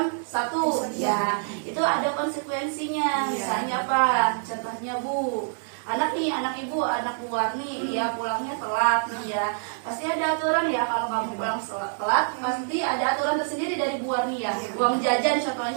1 ya. Itu ada konsekuensinya. Misalnya apa? Contohnya Bu, anak ibu, anak Bu Warni ya pulangnya telat nih ya. Pasti ada aturan ya, kalau kamu pulang telat pasti ada aturan tersendiri dari Bu Warni ya. Uang jajan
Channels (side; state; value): left; silent; digital silence